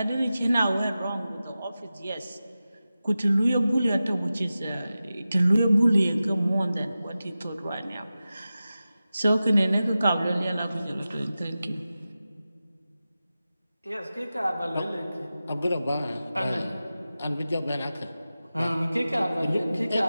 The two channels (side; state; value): both; inverted; correlation -0.94